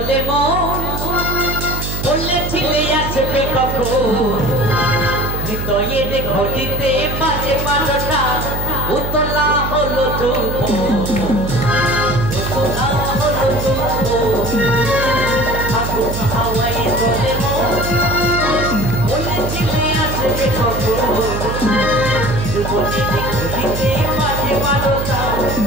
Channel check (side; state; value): right; noise; hum, 4 dB below the sound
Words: মন, বলেছিলে আসবে কখন, হৃদয়ের ঘটিতে বাজে বারোটা, উতলা হলো চুম্ব, উতলা হলো চুম্ব। ফাগুন হাওয়ায় দোলে মন, বলেছিলে আসবে কখন, হৃদয়ের ঘটিতে বাজে বারোটা,